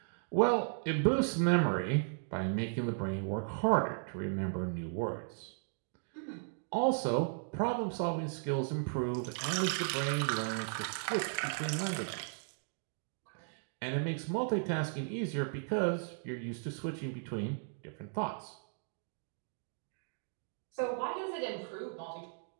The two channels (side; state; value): left; silent; digital silence